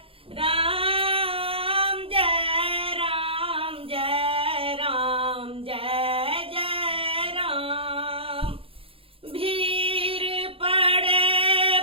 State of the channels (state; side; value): late; left; 0.27 ms